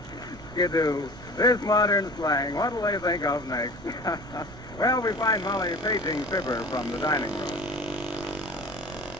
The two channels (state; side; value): noise; right; rumble, 17 dB below the sound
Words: Skidoo. This modern slang, what'll they think of next? Well, we find Molly paging Fibber from the dining room.